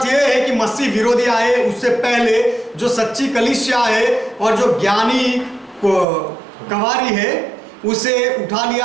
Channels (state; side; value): drops out; left; at 6.1 s